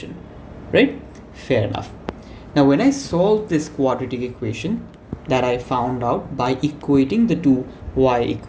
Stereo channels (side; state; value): both; identical; correlation 1.00